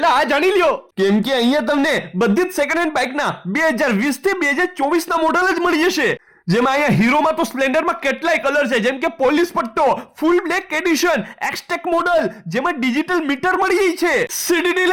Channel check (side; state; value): both; identical; correlation 1.00